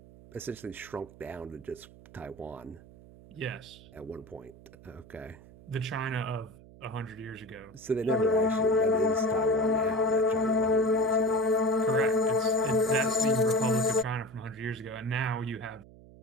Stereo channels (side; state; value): right; noise; hum, 21 dB below the sound